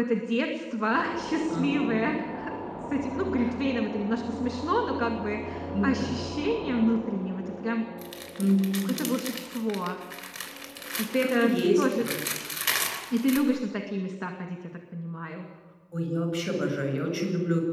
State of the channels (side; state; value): both; identical; correlation 1.00